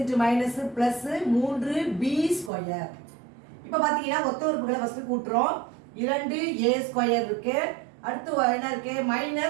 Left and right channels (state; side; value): drops out; left; at 2.5 s